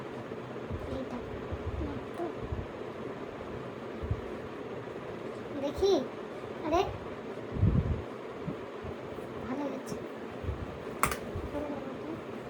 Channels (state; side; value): identical; both; correlation 1.00